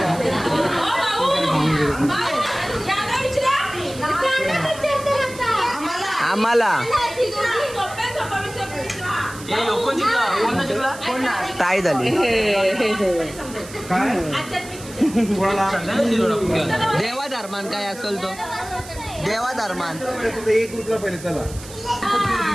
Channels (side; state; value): right; noise; hiss, 16 dB below the sound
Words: आम्हाला ताई झाली देवा धर्मान काय असेल तो देवा धर्मान एक ग्रुपला पहिले चला